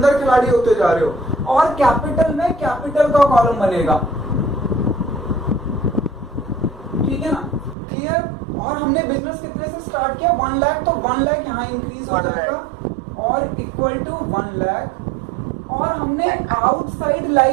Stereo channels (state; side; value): drops out; left; at 7.8 s